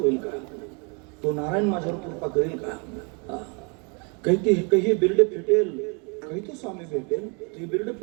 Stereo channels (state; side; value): quieter; left; 34.2 dB